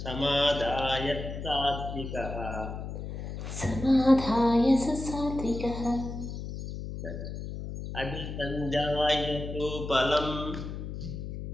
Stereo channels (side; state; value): left; noise; hum, 7 dB below the sound